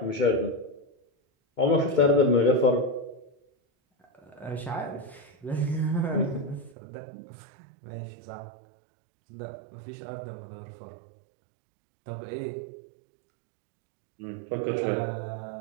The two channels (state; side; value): drops out; left; at 6.8 s